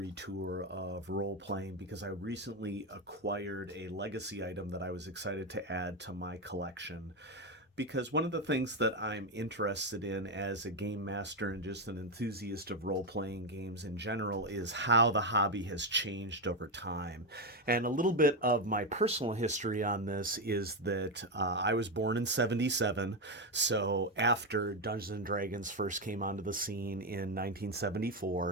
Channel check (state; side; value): normal; both; correlation 0.08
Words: tour of role playing because I recently acquired a legacy item that I was excited to add to my collection. Because one of the things that I'm interested in as a game master and just an enthusiast of role playing games in general is how the hobby has changed over time. And a little bit of my personal history on this is that I was born in '77, so after Dungeons and Dragons first came onto the scene in